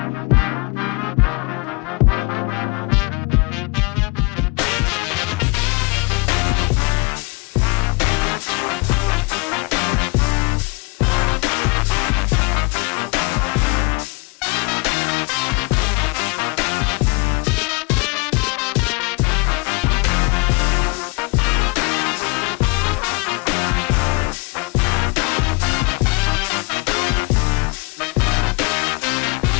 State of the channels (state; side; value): quieter; right; 29.0 dB